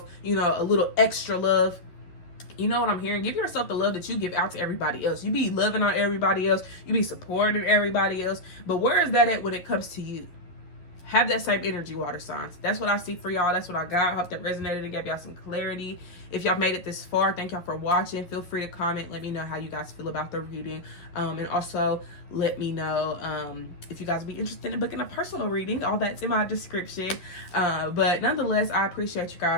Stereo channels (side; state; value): right; late; 11 ms